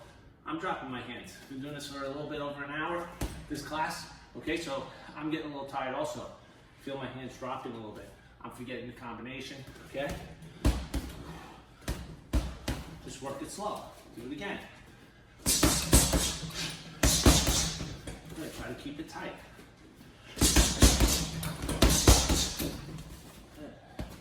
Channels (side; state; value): both; identical; correlation 1.00